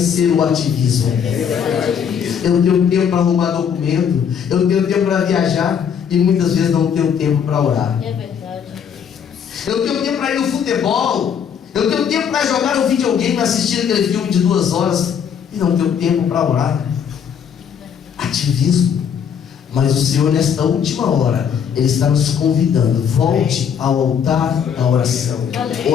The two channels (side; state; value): right; quieter; 7.7 dB